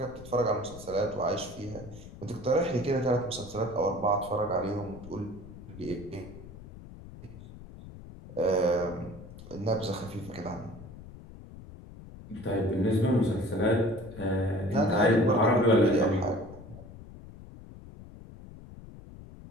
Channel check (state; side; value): noise; left; rumble, 16 dB below the sound